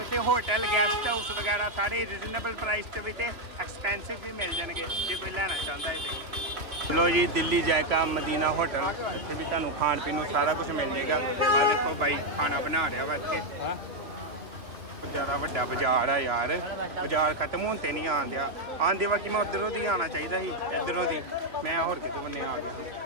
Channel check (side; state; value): left; late; 2.6 ms